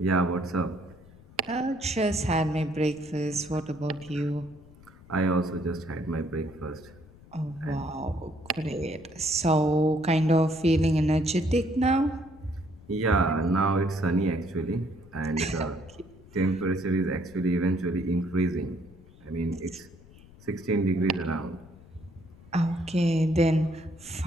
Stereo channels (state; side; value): noise; left; rumble, 22 dB below the sound